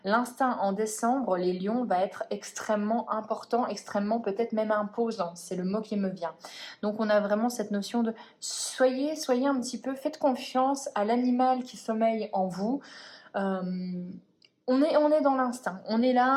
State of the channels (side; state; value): both; identical; correlation 1.00